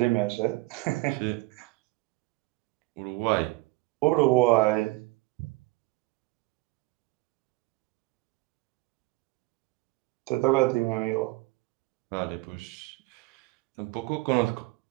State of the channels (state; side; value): quieter; left; 22.5 dB